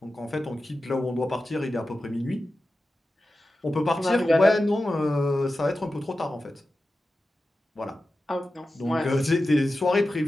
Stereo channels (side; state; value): both; normal; correlation 0.93